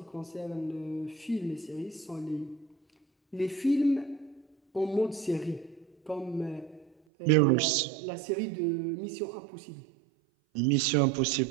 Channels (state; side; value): drops out; left; at 6.9 s